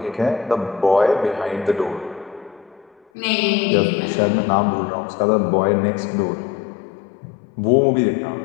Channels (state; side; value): drops out; right; at 3.0 s